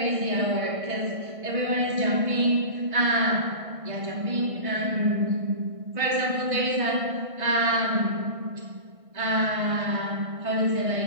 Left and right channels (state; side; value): late; left; 1.6 ms